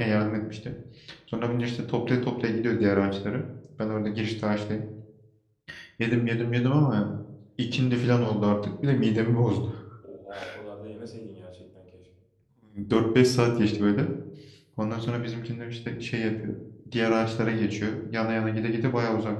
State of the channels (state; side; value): identical; both; correlation 1.00